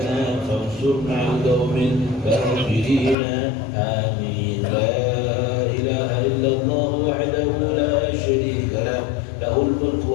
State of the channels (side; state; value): right; drops out; at 3.2 s